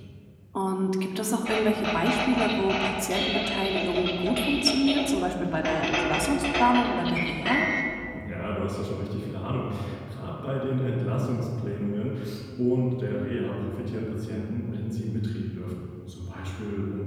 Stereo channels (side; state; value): both; identical; correlation 1.00